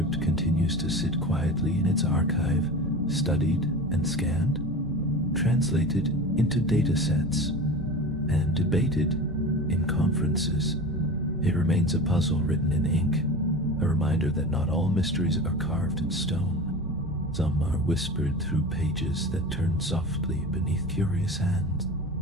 continues to sit quietly in its archive, studied and scanned, translated into data sets, and debated in conferences. It remains a puzzle written in ink, a reminder that not all mysteries are carved in stone. Some are whispered through pages that turn softly beneath curious hands.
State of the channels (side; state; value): both; normal; correlation 0.32